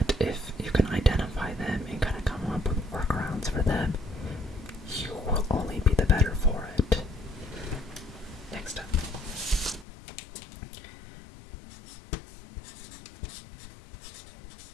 if you can identify them and kind of come up with workarounds for them, you will only be the better for it. Next up.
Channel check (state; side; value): drops out; right; at 9.9 s